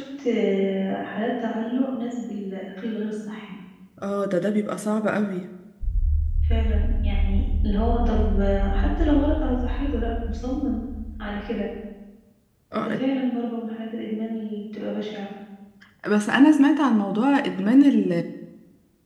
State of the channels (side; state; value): both; identical; correlation 1.00